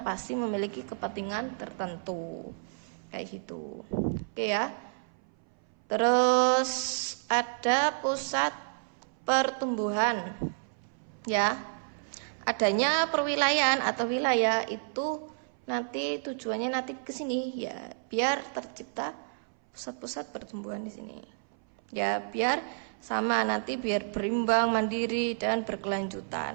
memiliki kepentingan tertentu kayak gitu. Oke ya. Terus ada pusat pertumbuhan ya. Adanya perwilayahan atau wilayah itu nanti tujuannya nanti ke sini ya, biar tercipta pusat-pusat pertumbuhan di sini. Ya, biar sama nanti biar berimbang, mandiri dan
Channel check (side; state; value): left; silent; 57 dB below the other